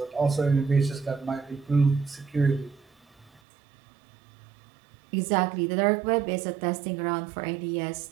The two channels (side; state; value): left; drops out; at 3.4 s